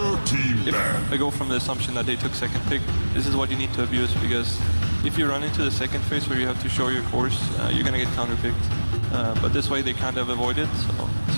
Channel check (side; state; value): both; inverted; correlation -1.00